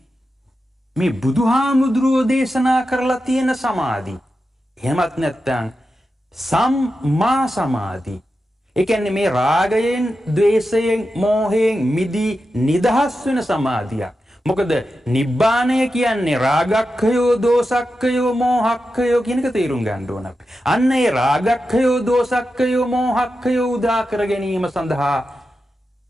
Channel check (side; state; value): both; normal; correlation 0.90